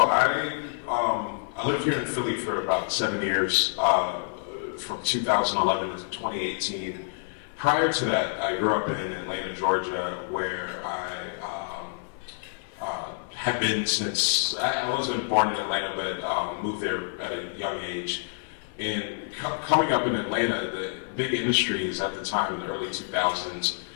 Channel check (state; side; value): silent; right; 60 dB below the other